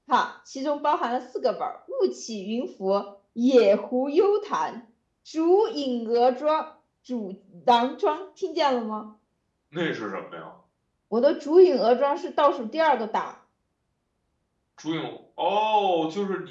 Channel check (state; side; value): identical; both; correlation 1.00